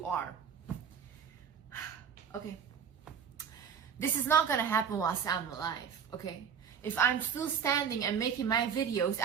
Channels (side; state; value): left; quieter; 7.4 dB